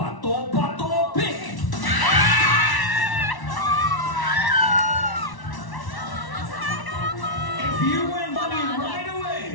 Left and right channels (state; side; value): late; right; 1.1 ms